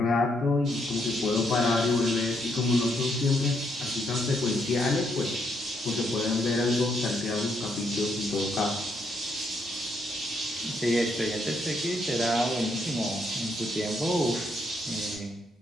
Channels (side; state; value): both; normal; correlation 0.75